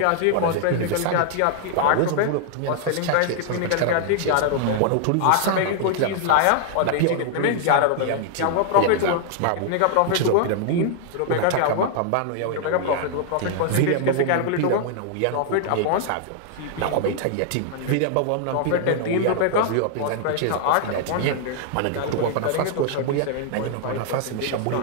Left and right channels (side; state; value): both; different; correlation -0.01